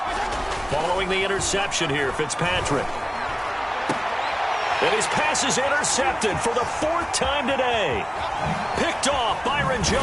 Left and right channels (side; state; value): both; identical; correlation 1.00